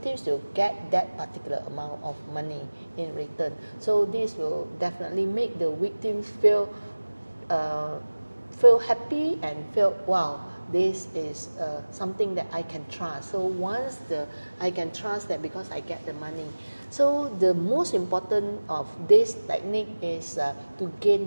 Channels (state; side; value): inverted; both; correlation -1.00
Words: will get that particular amount of money in return. So this will definitely make the victims feel happy and feel, wow, this is something that I can trust. So once I can trust that because I get the money. So the most important of this technique is to